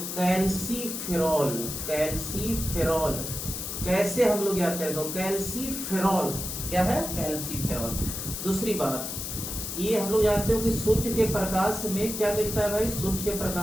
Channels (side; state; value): left; noise; hiss, 5 dB below the sound